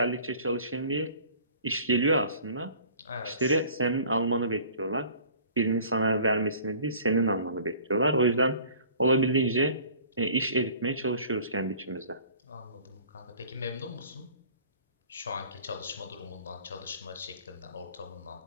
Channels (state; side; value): inverted; both; correlation -0.48